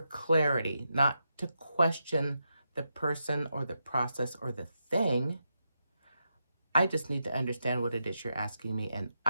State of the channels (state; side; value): inverted; both; correlation -0.85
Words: clarity, not to question the person or the process or the thing. I just need to understand what it is you're asking me, and